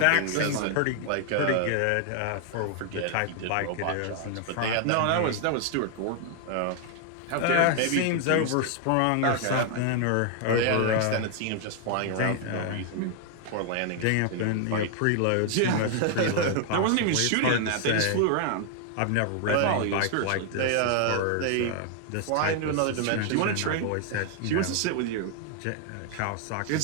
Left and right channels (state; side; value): different; both; correlation 0.00